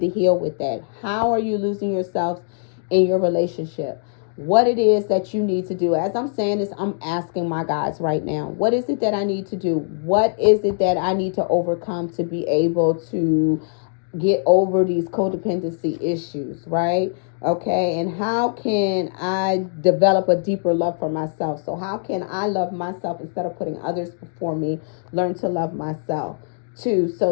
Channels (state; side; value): silent; right; digital silence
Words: heal with that. How are you losing yourself in your relationship? What it is that you need to do. As I'm saying this, I'm asking my guides right now. What is it that I need to do? What is it that I need to overcome to be able to get over these codependency issues, right? Okay, and how can I develop a deeper love for myself? So how can I love myself instead of putting others before me? Learn to love myself too,